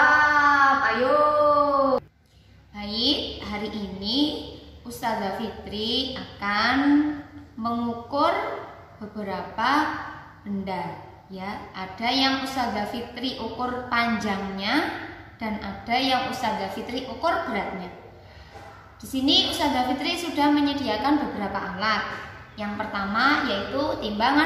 Ayo. Baik, hari ini Ustazah Fitri akan mengukur beberapa benda ya. Ada yang Ustazah Fitri ukur panjangnya dan ada yang Ustazah Fitri ukur beratnya. Di sini Ustazah Fitri sudah menyediakan beberapa alat. Yang pertama yaitu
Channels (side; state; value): both; identical; correlation 1.00